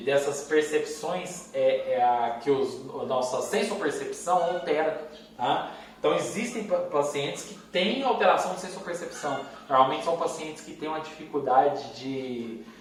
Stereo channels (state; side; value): identical; both; correlation 1.00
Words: dessas percepções que a nossa sensopercepção altera. Tá? Então existem pacientes que têm alteração de sensopercepção. Normalmente são pacientes que têm uma dificuldade de